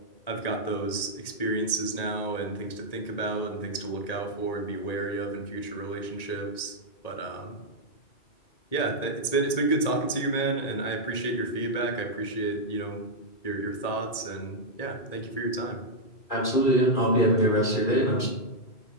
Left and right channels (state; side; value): late; right; 1.9 ms